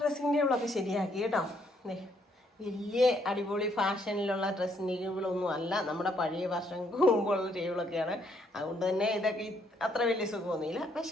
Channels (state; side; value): normal; both; correlation 0.71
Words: ഡ്രസ്സിങ് ടേബിളൊക്കെ ശരിയാക്കി കേട്ടോ. വലിയ അടിപൊളി ഫാഷനിലുള്ള ഡ്രസ്സിങ് ടേബിളൊന്നും അല്ല, നമ്മുടെ പഴയ വർഷങ്ങൾക്ക് മുമ്പുള്ള ടേബിളൊക്കെയാണ്. അതുകൊണ്ട് തന്നെ ഇതൊക്കെ അത്ര വലിയ സുഖമൊന്നുമില്ല,